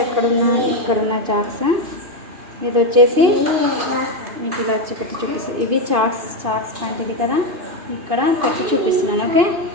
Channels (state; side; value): late; left; 2.6 ms